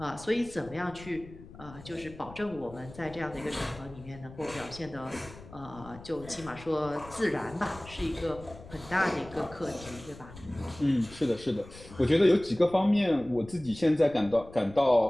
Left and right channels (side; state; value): left; noise; rumble, 18 dB below the sound